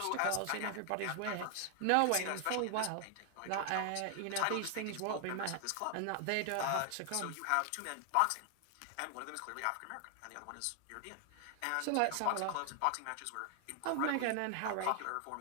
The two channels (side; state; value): both; different; correlation 0.00